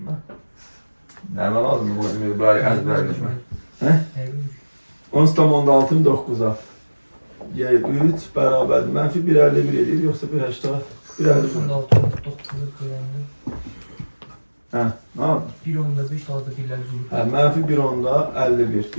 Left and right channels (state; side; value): inverted; both; correlation -1.00